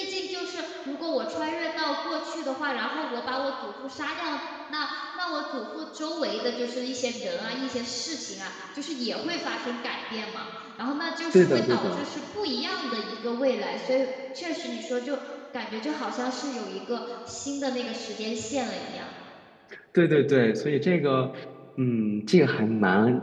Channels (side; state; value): both; identical; correlation 1.00